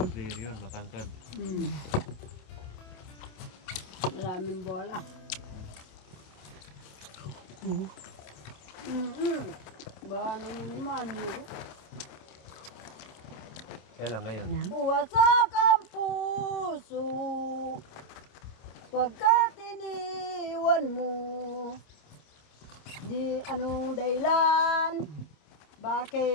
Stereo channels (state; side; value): late; right; 27 ms